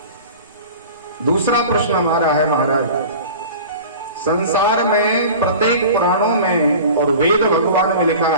दूसरा प्रश्न हमारा है महाराज, संसार में प्रत्येक पुराणों में और वेद भगवान में लिखा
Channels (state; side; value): inverted; both; correlation -0.39